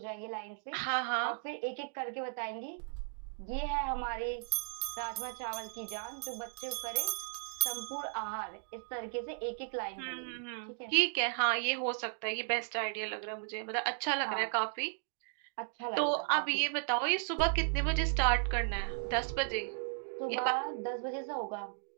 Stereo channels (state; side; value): silent; left; digital silence